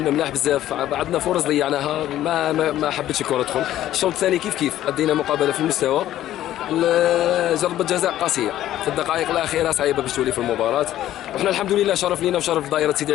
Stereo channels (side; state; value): right; quieter; 13.0 dB